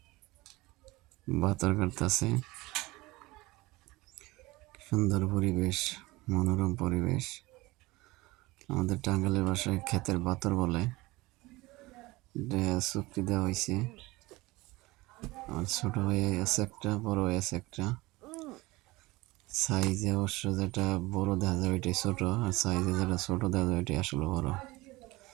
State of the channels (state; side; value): quieter; left; 21.1 dB